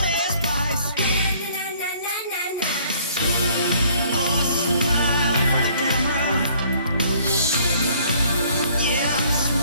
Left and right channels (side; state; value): both; inverted; correlation -0.59